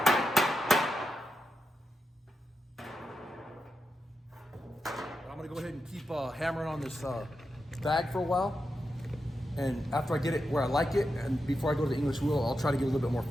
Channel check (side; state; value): both; normal; correlation 0.88